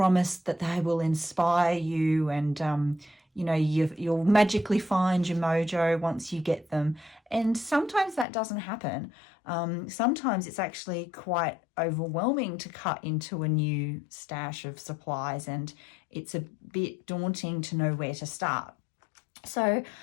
that they will inspire you, and you know, you'll magically find your mojo once you get them. And sometimes that doesn't happen. Sometimes it's actually quite overwhelming to cut into a new stash of supplies, and it's a bit daunting to know where to start. So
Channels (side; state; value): right; drops out; at 8.2 s